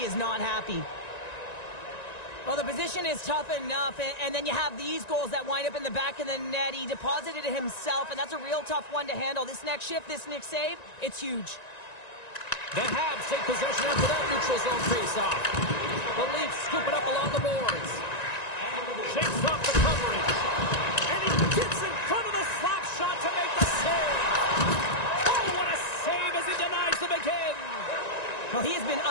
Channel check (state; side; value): late; right; 1.9 ms